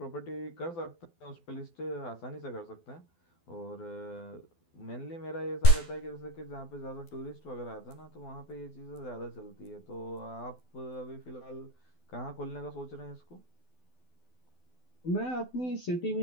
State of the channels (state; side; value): late; right; 12 ms